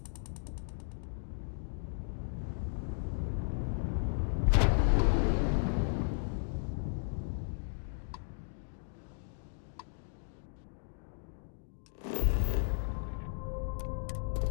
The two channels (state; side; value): silent; right; digital silence